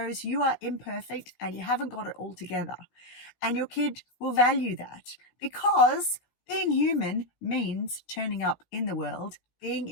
you are imperfect and you haven't got it all together. And your kid will value that, because being human means turning up in the world, being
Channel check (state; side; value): late; right; 16 ms